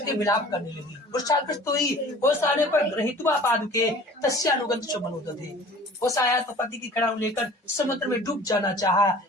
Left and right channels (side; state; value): both; normal; correlation 0.46